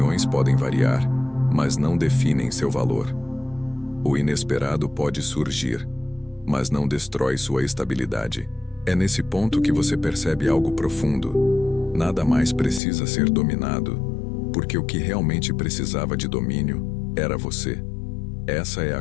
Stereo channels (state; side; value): drops out; right; at 12.8 s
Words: podem variar, mas não definem seu valor. O inesperado pode surgir, mas não destrói sua estabilidade. É nesse ponto que você percebe algo profundo. Nada mais precisa ser dominado, porque o que realmente precisava de domínio era você. Essa é